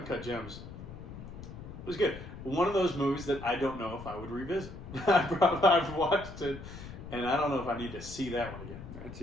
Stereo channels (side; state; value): left; noise; rumble, 12 dB below the sound